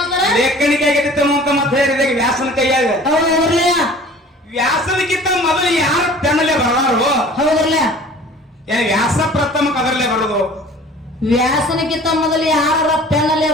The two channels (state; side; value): normal; both; correlation 0.47